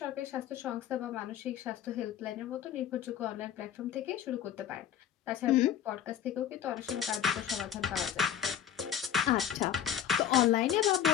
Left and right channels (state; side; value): quieter; right; 9.7 dB